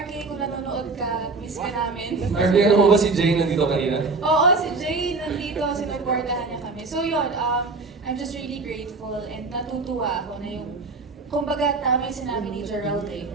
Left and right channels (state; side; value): quieter; left; 3.9 dB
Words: RK, kung nanonood ka, miss ka namin. Arvin, ano mo ba si Jane nandito kanina? Oo, si Jay nandito, sinuportahan niya kami. So yun, I'm just really grateful and natutuwa ako na yung, kumbaga tama yung sinabi ni Gerald